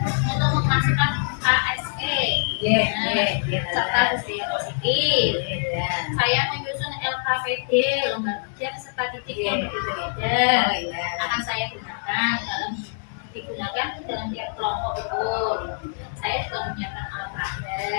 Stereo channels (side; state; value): right; silent; digital silence